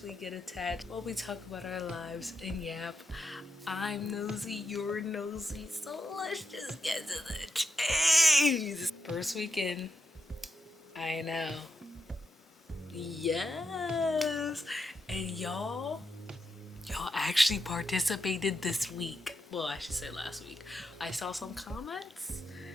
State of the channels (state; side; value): normal; both; correlation 0.85